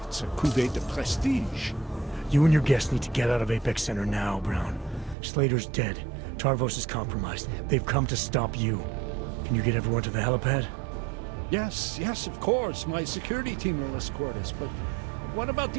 It's a cuvée de prestige. You and your guests need to get out of Apex Center now, Brown. Slater's dead. Tarvos is compromised. They've come to stop you. Can you get everyone to the helipad? Yes, of course. My security team will escort us, but what about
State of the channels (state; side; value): drops out; left; at 5.2 s